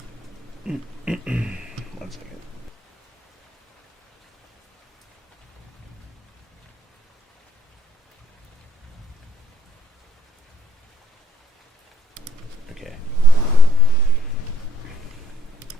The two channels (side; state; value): both; normal; correlation 0.66